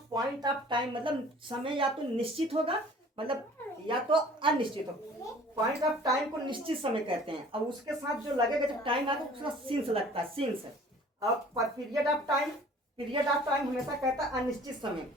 पॉइंट ऑफ टाइम, मतलब समय या तो निश्चित होगा, मतलब या तो अनिश्चित होगा। पॉइंट ऑफ टाइम को निश्चित समय कहते हैं। अब उसके साथ जो लगेगा जब टाइम आएगा उसका सिंस लगता है, सिंस। अब period of time, period of time हमेशा कहता है अनिश्चित समय,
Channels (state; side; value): normal; both; correlation 0.50